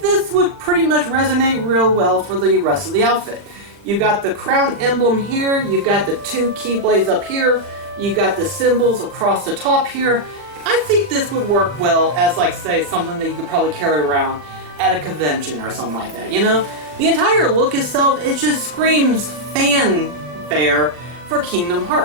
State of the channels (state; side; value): late; left; 40 ms